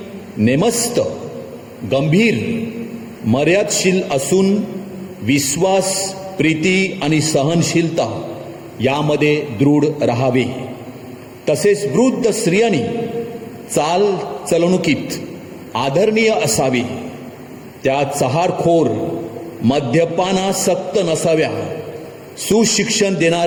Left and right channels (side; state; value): both; identical; correlation 1.00